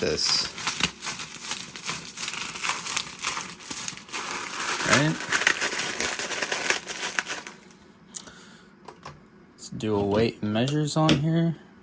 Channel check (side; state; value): both; identical; correlation 1.00